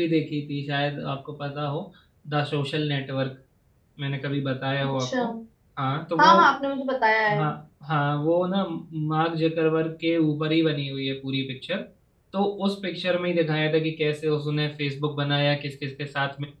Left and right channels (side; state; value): both; identical; correlation 1.00